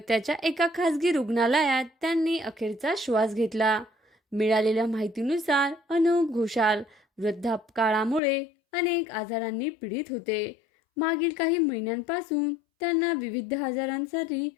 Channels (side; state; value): right; drops out; at 8.2 s